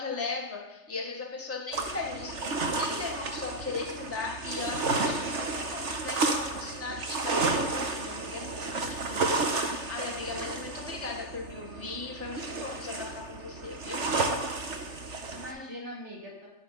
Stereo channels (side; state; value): left; late; 3.3 ms